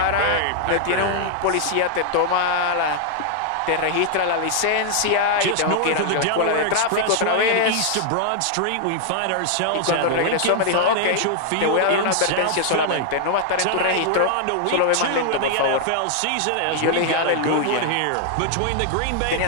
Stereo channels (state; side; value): different; both; correlation -0.01